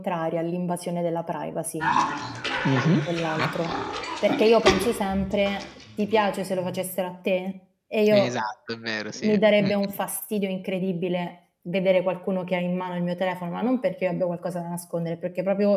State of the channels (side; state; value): both; identical; correlation 1.00